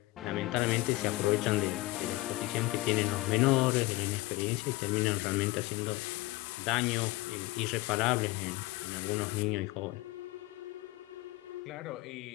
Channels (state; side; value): quieter; right; 20.0 dB